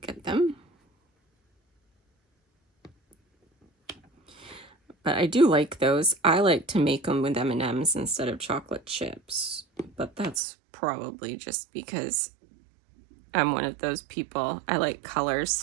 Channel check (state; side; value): drops out; left; at 10.4 s